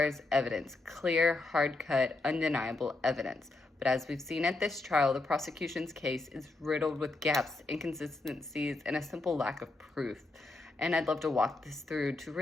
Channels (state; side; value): quieter; right; 3.2 dB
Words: evidence, clear, hard-cut, undeniable evidence. But as we've seen at this trial, the prosecution's case is riddled with gaps, inconsistencies, and a simple lack of proof. And I'd love to walk this through to